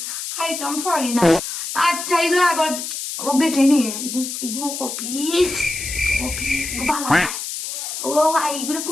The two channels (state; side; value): noise; left; hiss, 6 dB below the sound